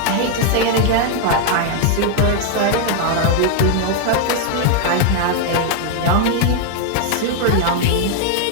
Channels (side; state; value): both; different; correlation 0.00